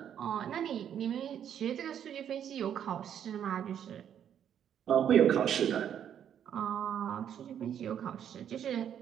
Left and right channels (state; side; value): quieter; left; 9.3 dB